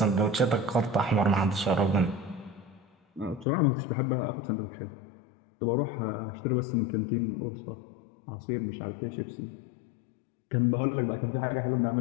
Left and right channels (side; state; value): right; drops out; at 3.5 s